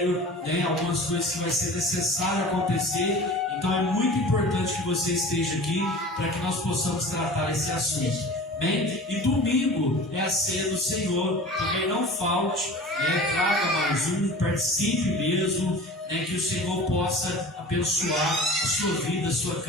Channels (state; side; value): normal; both; correlation 0.39